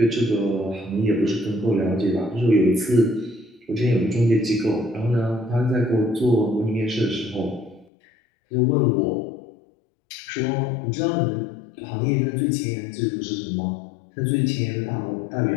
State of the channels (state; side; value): drops out; right; at 7.9 s